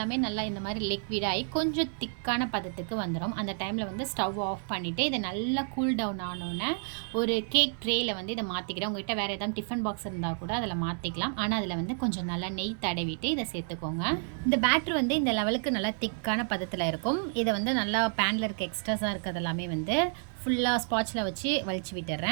நல்லா இந்த மாதிரி லிக்விடாகி கொஞ்சம் திக்கான பதத்துக்கு வந்துடும். அந்த டைமில் வந்து ஸ்டவ் ஆஃப் பண்ணிவிட்டு இதை நல்லா கூல் டவுன் ஆனோன்னே ஒரு கேக் ட்ரேயில் வந்து இதை மாற்றிக்கிறேன். உங்கள்கிட்ட வேறு ஏதாவது டிஃபன் பாக்ஸ் இருந்தால் கூட அதில் மாற்றிக்கலாம். ஆனால் அதில் வந்து கொஞ்சம் நல்லா நெய் தடவிட்டு இதை சேர்த்துக்கோங்க. இந்த பேட்டர் வந்து இந்த லெவலுக்கு நல்லா திக்கான பதத்தில் இருக்கும். இதை வந்து நல்லா பேனில் இருக்க எக்ஸ்ட்ராஸாக இருக்கிறது எல்லாமே வந்து ஃபுல்லாக ஸ்பாட்சில் வச்சு வலிச்சு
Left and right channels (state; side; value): silent; left; 58 dB below the other